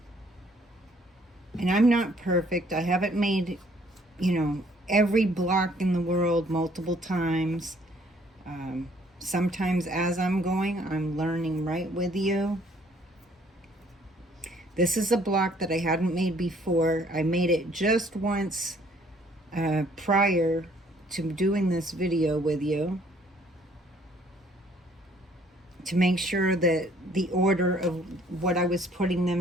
And I'm not perfect. I haven't made, every block in the world multiple times. Sometimes as I'm going, I'm learning right with you. This is a block that I hadn't made before. I made it just once prior to doing this video with you, to make sure that the order of what I was putting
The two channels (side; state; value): both; normal; correlation 0.62